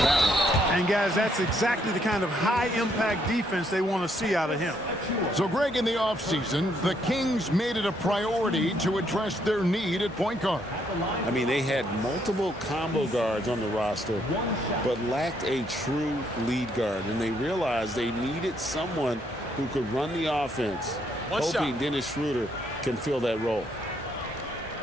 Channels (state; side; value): normal; both; correlation 0.72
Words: one. And, guys, that's exactly the kind of high-impact defense they want to see out of him. So, Greg, in the offseason, the Kings made it a priority to address their need at point guard. I mean, they had multiple combo guards on the roster, but lacked a true lead guard. And they realized they needed someone who could run the offense, hoping Dennis Schroeder can fill that role.